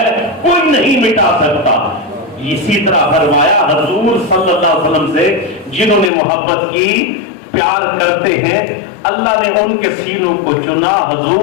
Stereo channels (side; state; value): right; drops out; at 6.1 s